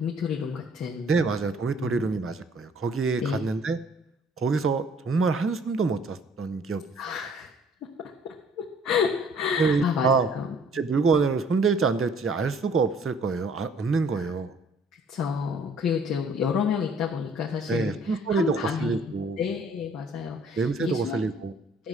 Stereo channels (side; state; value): both; normal; correlation 0.57